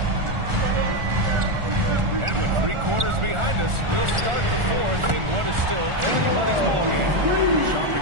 And with 3 quarters behind us, we'll start the 4th in what is still anybody's ballgame. Sharp and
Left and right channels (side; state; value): left; late; 1.4 ms